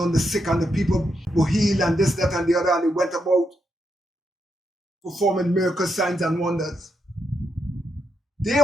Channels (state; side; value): normal; both; correlation 0.82